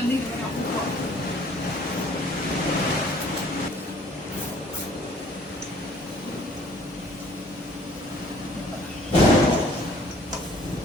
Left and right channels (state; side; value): normal; both; correlation 0.56